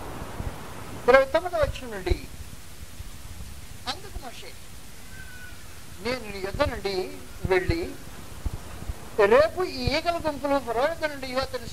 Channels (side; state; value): both; identical; correlation 1.00